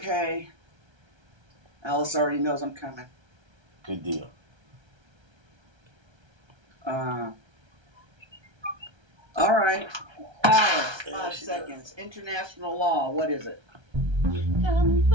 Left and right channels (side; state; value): left; late; 1.3 ms